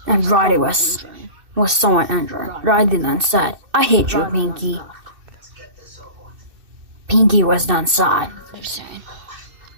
And Roddy was somewhat injured. Roddy then said, "I hate you, Pinky." Pinky was then sad They're saying,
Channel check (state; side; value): late; left; 2.6 ms